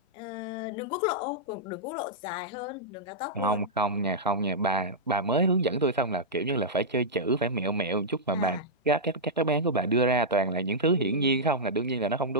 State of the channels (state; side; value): normal; both; correlation -0.10